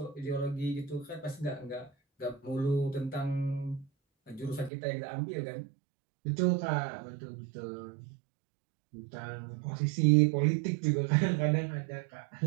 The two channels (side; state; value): left; drops out; at 4.7 s